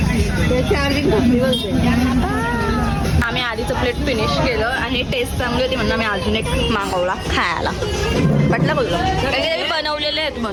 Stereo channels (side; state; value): both; identical; correlation 1.00